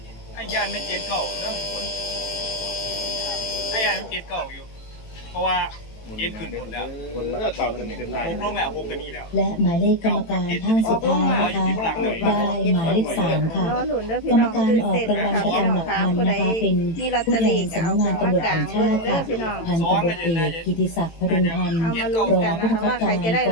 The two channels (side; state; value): right; late; 18 ms